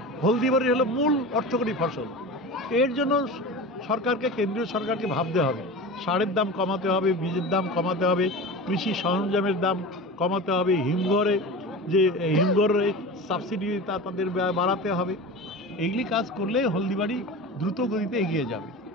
হলদিবাড়ি হলো মূল অর্থকরী ফসল। এর জন্য সরকারকে, কেন্দ্রীয় সরকারকে ভাবতে হবে। সারের দাম কমাতে হবে, বীজের দাম কমাতে হবে, কৃষি সরঞ্জামের দাম কমাতে হবে, হিমঘরে সাবসিডি তাদের বাড়াতে হবে। এইগুলি কাজ করলে হলদিবাড়ি দ্রুত গতিতে এগিয়ে যাবে।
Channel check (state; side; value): normal; both; correlation 0.31